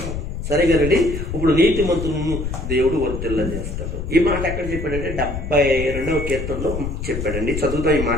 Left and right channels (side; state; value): left; noise; rumble, 5 dB below the sound